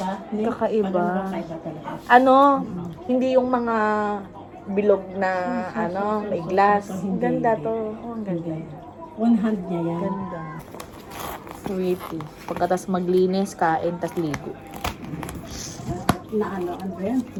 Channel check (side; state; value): both; identical; correlation 1.00